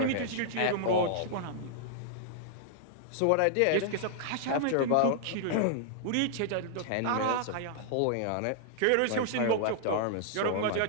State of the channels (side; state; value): both; different; correlation -0.01